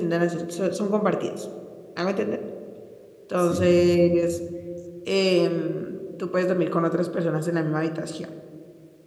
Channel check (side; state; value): both; identical; correlation 1.00